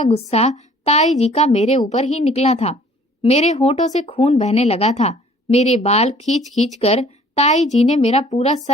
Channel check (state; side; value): normal; both; correlation 0.55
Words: गुस्सा ताई जी का मेरे ऊपर ही निकला था। मेरे होठों से खून बहने लगा था। मेरे बाल खींच खींच कर ताई जी ने मेरा पूरा